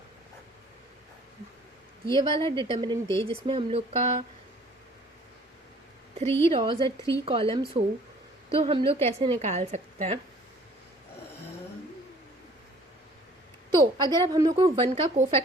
ये वाला डिटर्मिनेंट दे जिसमें हम लोग का 3 रॉज और 3 कॉलम्स हो, तो हम लोग कैसे निकाल सकते हैं. तो अगर अब हम लोग को 1 का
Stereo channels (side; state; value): both; normal; correlation 0.54